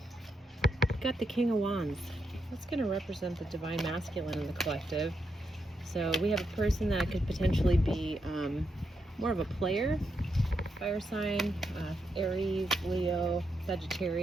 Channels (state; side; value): normal; both; correlation 0.83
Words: We've got the King of Wands. That's going to represent the Divine Masculine in the collective. So we have a person that could potentially be more of a player, fire sign, Aries, Leo,